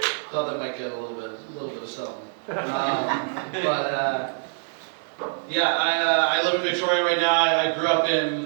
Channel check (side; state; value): left; silent; digital silence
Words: Thought that might get a little bit of something. I live in Victoria right now. I grew up in